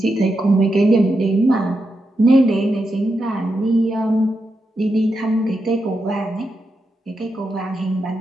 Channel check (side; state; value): both; normal; correlation 0.86